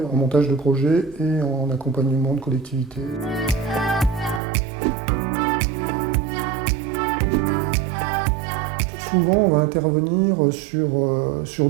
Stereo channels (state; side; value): drops out; left; at 4.4 s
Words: en montage de projets et en accompagnement de collectivités. Souvent, on va intervenir sur